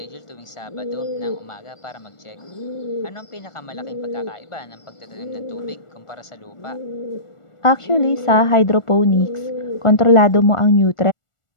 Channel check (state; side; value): late; right; 1.4 ms